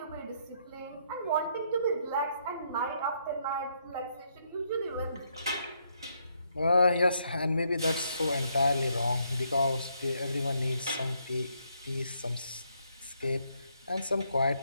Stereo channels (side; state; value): both; inverted; correlation -0.74